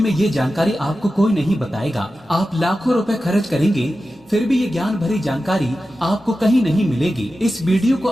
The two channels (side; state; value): both; normal; correlation 0.93